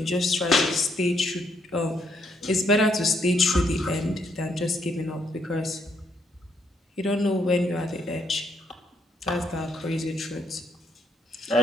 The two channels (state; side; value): normal; both; correlation 0.73